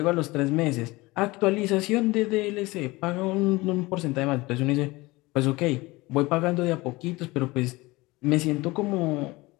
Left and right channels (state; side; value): quieter; right; 21.6 dB